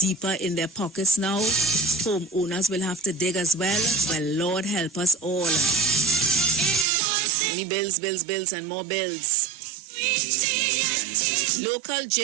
in their pockets now? Homeowners will have to dig as well? Well, Lord help us all. Only bills, and more bills. Local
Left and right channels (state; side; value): drops out; left; at 6.9 s